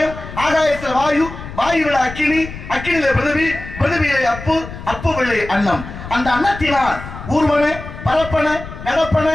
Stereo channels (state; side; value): noise; left; rumble, 12 dB below the sound